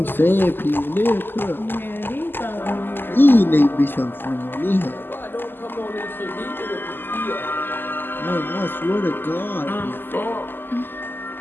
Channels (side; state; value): right; late; 0.096 ms